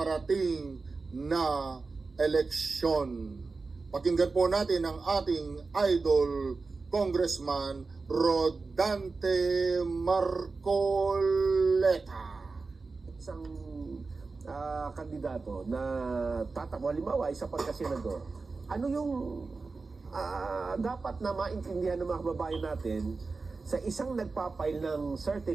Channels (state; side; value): quieter; left; 4.1 dB